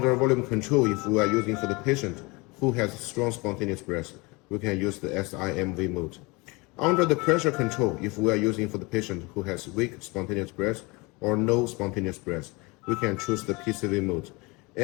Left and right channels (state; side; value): quieter; right; 26.1 dB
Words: volume control, if we are using for the patient who has strong spontaneous breath, we can use the SIMV mode. Under the pressure control, if we are using for the patient who has weak spontaneous breath or no spontaneous breath, we can choose the PCV mode.